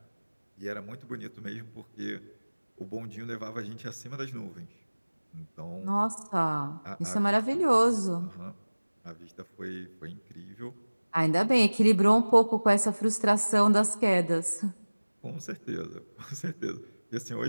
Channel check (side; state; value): both; inverted; correlation -1.00